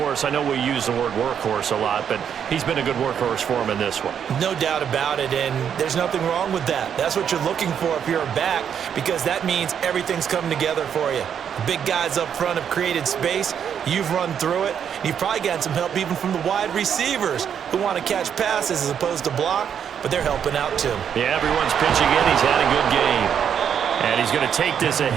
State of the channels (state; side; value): quieter; left; 8.3 dB